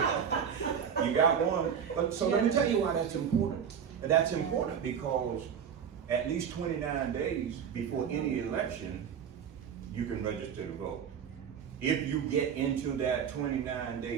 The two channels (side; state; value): left; quieter; 7.7 dB